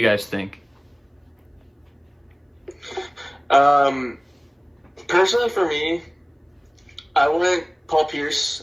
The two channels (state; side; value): identical; both; correlation 1.00